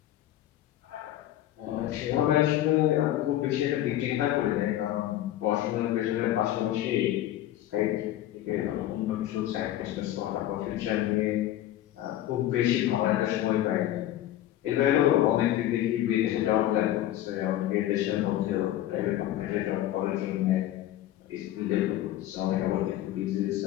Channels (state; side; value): quieter; right; 13.2 dB